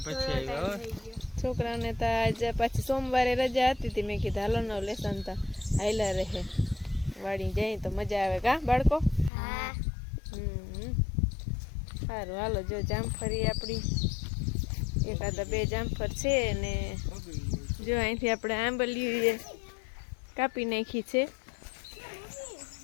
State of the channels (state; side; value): drops out; right; at 9.3 s